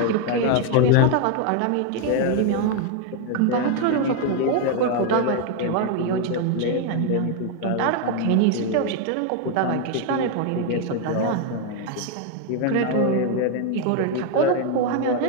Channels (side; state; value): both; different; correlation 0.01